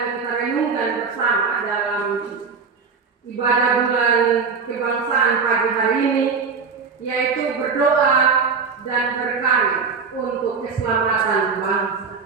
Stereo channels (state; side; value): quieter; left; 5.3 dB